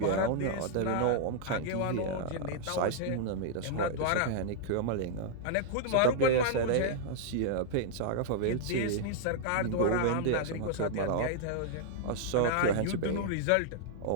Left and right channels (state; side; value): different; both; correlation -0.01